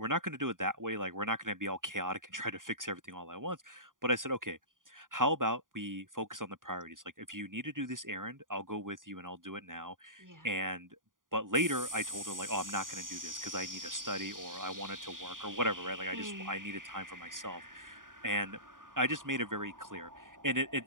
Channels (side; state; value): left; late; 0.89 ms